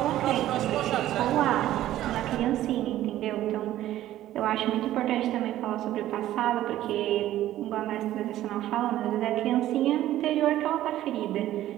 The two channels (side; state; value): left; quieter; 13.7 dB